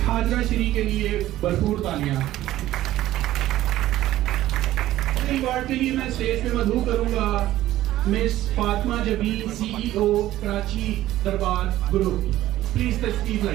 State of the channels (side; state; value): left; quieter; 14.6 dB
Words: हाजरा शरी के लिए भरपूर तालियां। अवार्ड के लिए मैं स्टेज पे मदहू करूंगा मिस फातिमा जबीन, CEO कराची दरबार ग्रुप। प्लीज तशरीफ